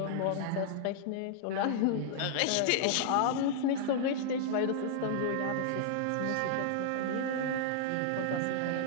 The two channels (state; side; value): different; both; correlation -0.01